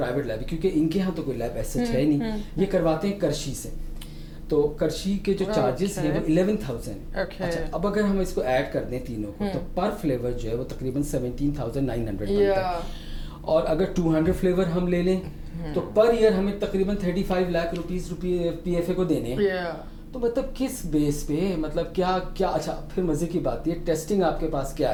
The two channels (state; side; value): identical; both; correlation 1.00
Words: لیب, کیونکہ ان کے ہاں تو کوئی لیب ایسا ہے نہیں, یہ کرواتے ہیں کرشی سے. تو کرشی کے جو چارجز ہیں وہ 11,000 ہیں. اچھا, اب اگر ہم اس کو ایڈ کر دیں تینوں کو تو پر فلیور جو ہے وہ تقریباً 17,900 بنتا ہے. اور اگر 200 فلیور ہم لے لیں تو پر ایئر ہمیں تقریباً 35 lakh rupees P F A کو دینے ہیں. تو مطلب کس بیس پہ, مطلب کیا. اچھا پھر مزے کی بات یہ ٹیسٹنگ آپ کے پاس